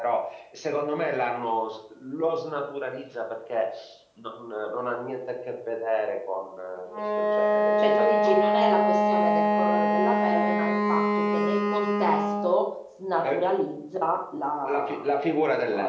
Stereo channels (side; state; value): both; identical; correlation 1.00